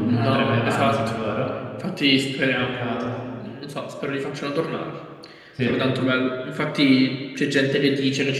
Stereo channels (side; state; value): both; identical; correlation 1.00